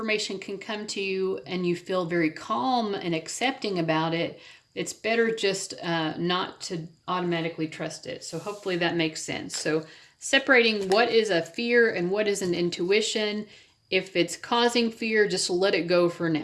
can come to you and you feel very calm and accepting about it, it's better just not to automatically trust it. So hopefully that makes sense. So separating what is a fear and what is an intuition. If it's causing fear, just let it go for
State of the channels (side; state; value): both; identical; correlation 1.00